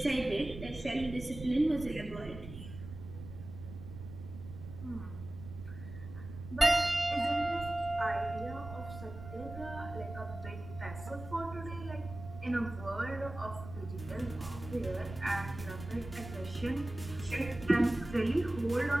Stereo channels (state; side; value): noise; right; rumble, 12 dB below the sound